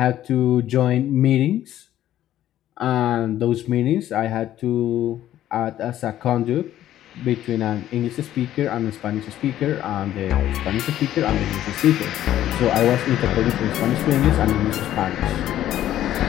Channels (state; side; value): quieter; right; 12.5 dB